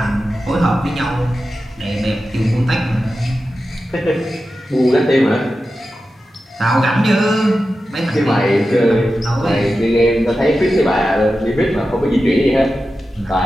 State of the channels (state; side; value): normal; both; correlation 0.92